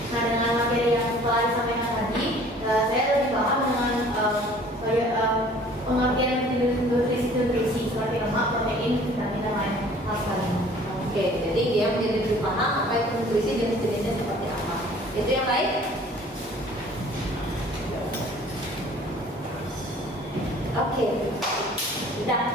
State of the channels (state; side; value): normal; both; correlation 0.51